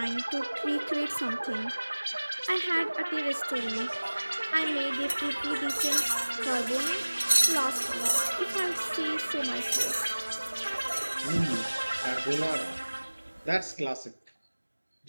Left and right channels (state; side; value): inverted; both; correlation -1.00